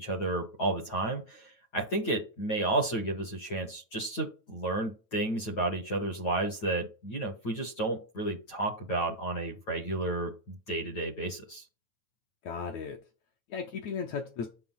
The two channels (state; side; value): late; right; 9.1 ms